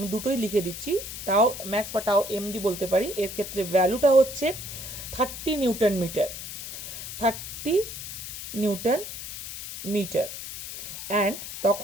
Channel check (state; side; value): noise; left; hiss, 9 dB below the sound